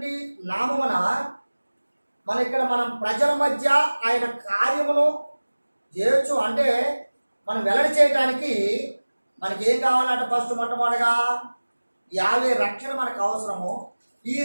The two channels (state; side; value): inverted; both; correlation -1.00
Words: నామమున మనం ప్రజల మధ్య ఆయన కార్యమును చేయొచ్చు. అంటే మనం వెల్లడి చేయడానికి మనకి ఏం కావాలంటే ఫస్ట్ మొట్టమొదటిగా యావే రక్షణ మనకు అవసరము. ఈ